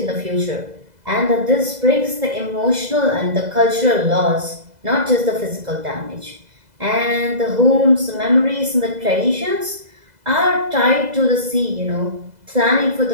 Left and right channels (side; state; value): left; late; 2.0 ms